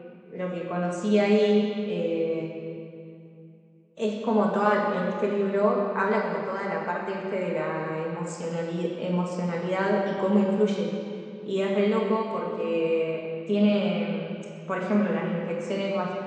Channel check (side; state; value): both; identical; correlation 1.00